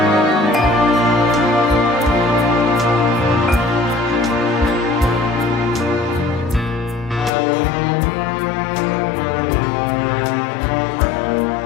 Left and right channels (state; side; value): drops out; right; at 7.3 s